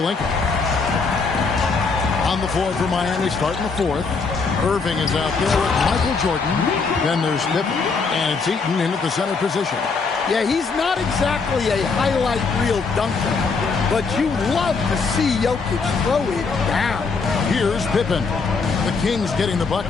On the floor for Miami, starting the 4th. Erving is out there with Michael Jordan. Then there's Pippen. And it's Eaton in at the center position. Yeah, he's not exactly a highlight reel dunker, but you love to see Jokic throw it down. Here's Pippen. The Kings getting the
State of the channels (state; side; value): quieter; right; 4.7 dB